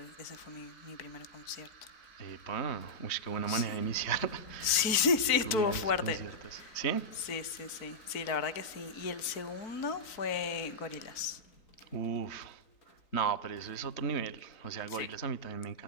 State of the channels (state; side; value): late; right; 3.9 ms